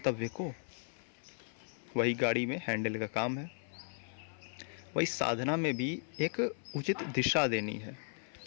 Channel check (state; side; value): silent; right; 54 dB below the other